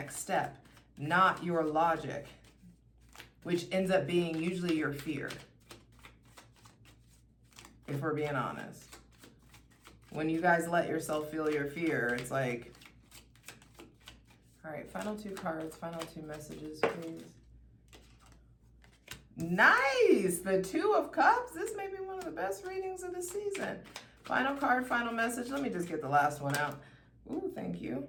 step, not your logic, which ends up being usually your fear, if we're being honest. When you guys let yourself feel your fear, it's like, all right, final two cards, final two messages, please. Nice! The Two of Cups. This may be one of the best readings of the season. Final card, final message. Let me just get the last one out. Ooh, thank you.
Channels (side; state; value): both; identical; correlation 1.00